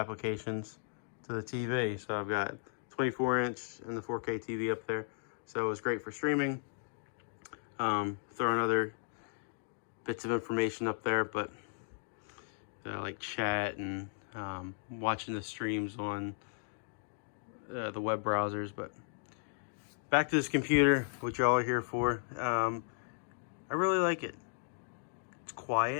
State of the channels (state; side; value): silent; right; digital silence